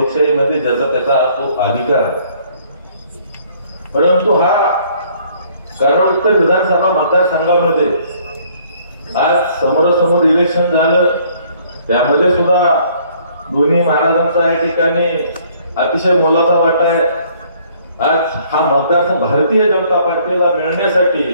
ज्याचा त्याचा तो अधिकार आहे. परंतु हा कराड उत्तर विधानसभा मतदारसंघामध्ये आज समोरासमोर इलेक्शन झालं, त्यामध्ये सुद्धा दोन्ही महाराजांचा या ठिकाणी अतिशय मोलाचा वाटा आहे. आज हा मतदारसंघ भारतीय जनता पार्टीला मिळण्यासाठी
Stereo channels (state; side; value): inverted; both; correlation -0.61